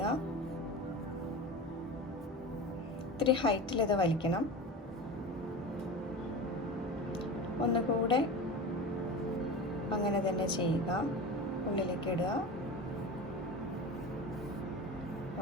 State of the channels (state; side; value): normal; both; correlation 0.30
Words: ഇത്തിരി ഹൈറ്റിൽ ഇത് വലിക്കണം. ഒന്നുകൂടെ അങ്ങനെ തന്നെ ചെയ്യുക. ഉള്ളിലേക്ക് ഇടുക,